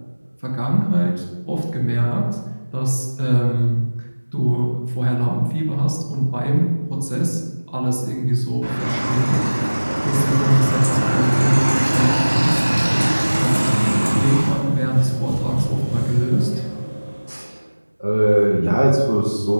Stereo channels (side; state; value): both; inverted; correlation -1.00